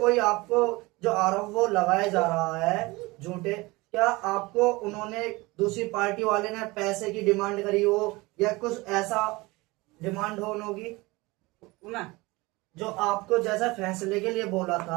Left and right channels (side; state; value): left; quieter; 22.7 dB